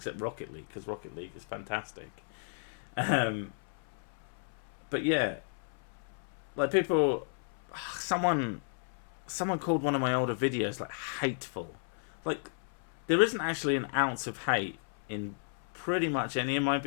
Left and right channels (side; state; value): right; silent; 55 dB below the other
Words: Rocket League, because Rocket League is fantastic. But yeah, like people, someone called one of my older videos like hateful. Like, there isn't actually an ounce of hate in pretty much any of my